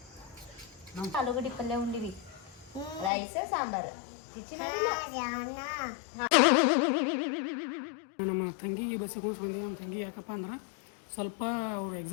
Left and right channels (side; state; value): right; drops out; at 3.1 s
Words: ಆಲೂಗಡ್ಡಿ ಪಲ್ಯ ಉಂಡಿವಿ, ರೈಸ್ ಸಾಂಬಾರ್. ನಮ್ಮ ತಂಗಿಗೆ ಬಸ್ಸಿಗೆ ಬಂದೀವಿ. ನಮ್ಮ ತಂಗಿ ಯಾಕಪ್ಪ ಅಂದ್ರೆ ಸ್ವಲ್ಪ ಅವ್ರು